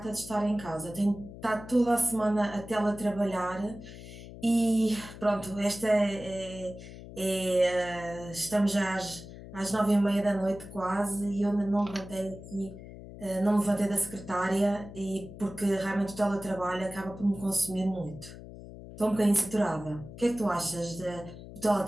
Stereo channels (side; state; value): left; noise; hum, 14 dB below the sound